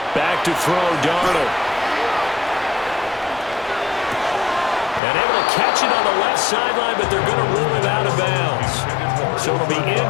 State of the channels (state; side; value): drops out; right; at 5.0 s